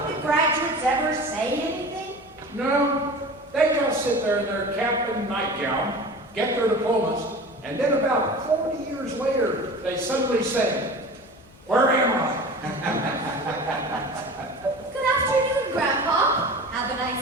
the graduates ever say anything? No, they just sit there in their cap and nightgown, get their diplomas, and then about 40 years later, they suddenly say, "Where am I?" Good afternoon, Grandpa. Have a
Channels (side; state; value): both; normal; correlation 0.36